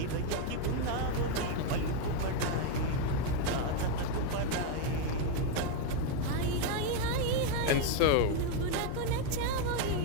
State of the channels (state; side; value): different; both; correlation 0.02